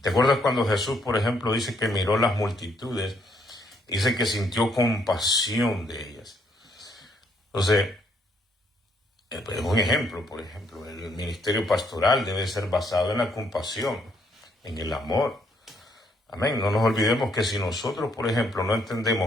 ¿Te acuerdas cuando Jesús, por ejemplo, dice que miró las multitudes? Dice que sintió compasión de ellas. Entonces, Es un ejemplo, por ejemplo, el ministerio pastoral debe ser basado en la compasión, en el amor. Amén. No nos olvidemos que si nosotros, por ejemplo, no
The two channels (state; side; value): normal; both; correlation 0.70